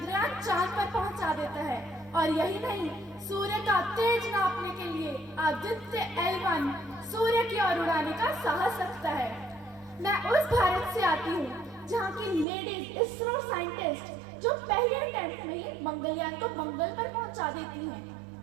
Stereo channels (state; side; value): drops out; left; at 12.5 s